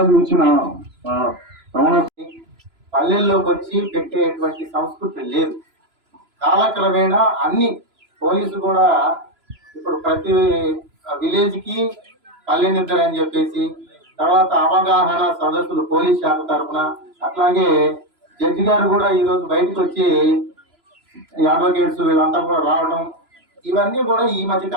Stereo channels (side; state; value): left; late; 3.0 ms